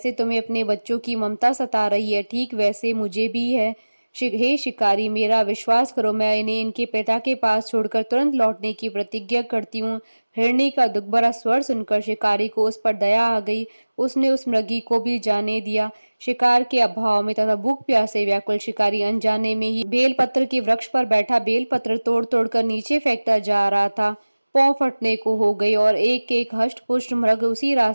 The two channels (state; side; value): inverted; both; correlation -1.00